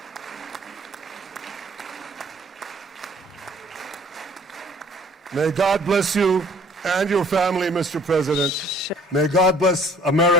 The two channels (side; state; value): both; normal; correlation 0.55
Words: May God bless you and your family, Mr. President. May God bless